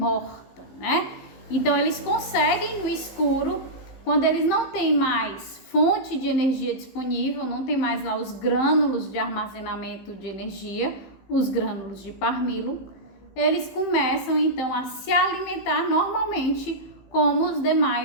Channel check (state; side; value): late; right; 15 ms